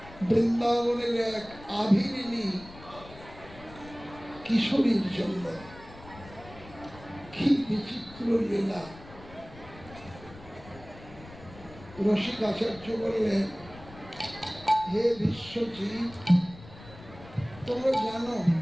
বৃন্দাবনের এক আভিরিনী কিশোরীর জন্য। কি বিচিত্র লীলা! রসিক আচার্য বললেন, হে বিশ্বজিৎ, তোমরা জানো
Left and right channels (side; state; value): left; noise; rumble, 18 dB below the sound